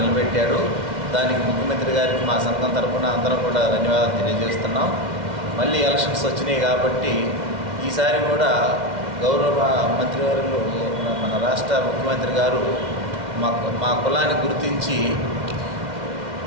దానికి ముఖ్యమంత్రి గారికి మా సంఘం తరఫున అందరం కూడా ధన్యవాదాలు తెలియజేస్తున్నాం. మళ్ళీ ఎలక్షన్స్ వచ్చినాయి కాబట్టి ఈసారి కూడా గౌరవ మంత్రివర్యులు మన రాష్ట్ర ముఖ్యమంత్రి గారు మా కులాన్ని గుర్తించి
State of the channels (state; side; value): late; left; 2.1 ms